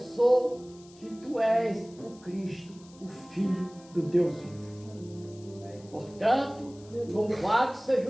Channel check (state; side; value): noise; left; hiss, 25 dB below the sound